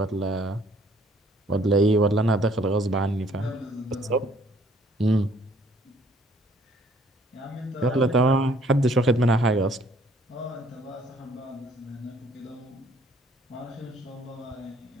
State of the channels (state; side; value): normal; both; correlation 0.61